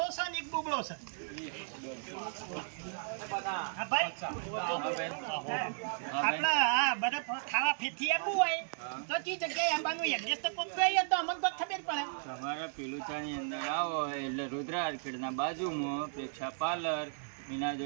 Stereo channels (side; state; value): left; silent; digital silence